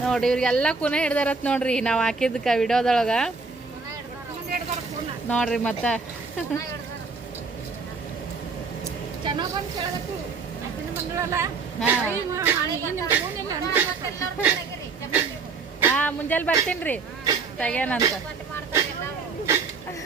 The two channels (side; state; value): left; quieter; 4.5 dB